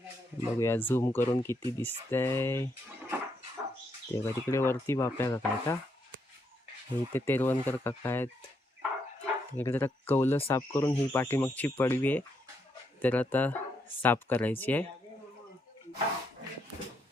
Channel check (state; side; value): normal; both; correlation 0.77